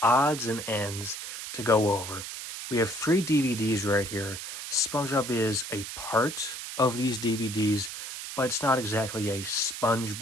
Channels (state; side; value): noise; right; hiss, 8 dB below the sound